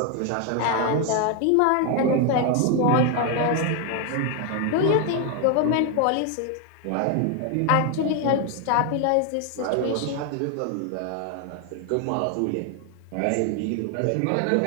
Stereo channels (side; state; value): both; different; correlation 0.00